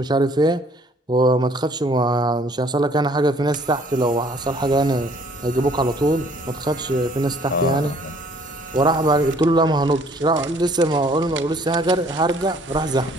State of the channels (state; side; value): normal; both; correlation 0.58